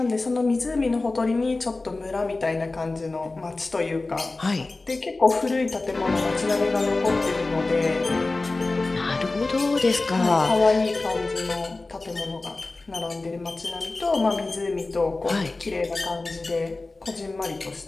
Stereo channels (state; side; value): quieter; right; 3.3 dB